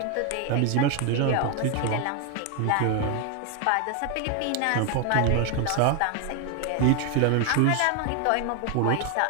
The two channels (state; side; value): different; both; correlation 0.01